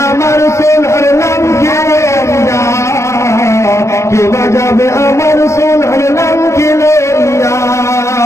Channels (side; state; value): right; late; 0.14 ms